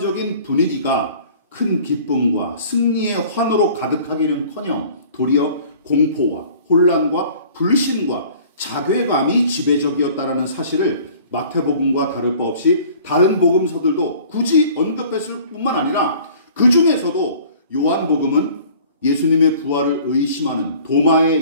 분위기가 큰 기쁨과 승리의 환호로 가득하기는커녕 도리어 공포와 혼란과 불신과 자괴감이 지배적이었다라는 사실을 마태복음과 다를 바 없이 다른 복음서들도 굳이 언급했을 뿐만 아니라 그 중에서도 요한복음은 예수님의 부활을 의심하는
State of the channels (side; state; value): both; inverted; correlation -0.49